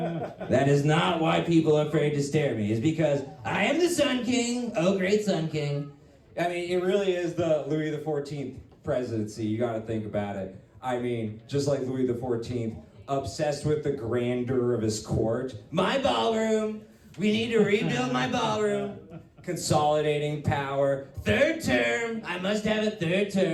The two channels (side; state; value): both; identical; correlation 1.00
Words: That is not why people are afraid to stare at me. It's because I am the Sun King. Oh, great Sun King. I mean, it really is the Louis XIV presidency. You got to think about it. I mean, just like Louis XIV, obsessed with the grandeur of his court. My ballroom. We need to rebuild my ballroom. Consolidating power. Third term. I must have a third